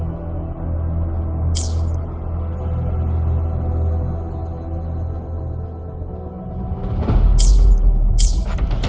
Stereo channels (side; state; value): both; identical; correlation 1.00